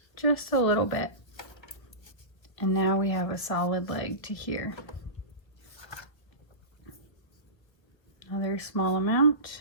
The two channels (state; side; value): late; right; 1.4 ms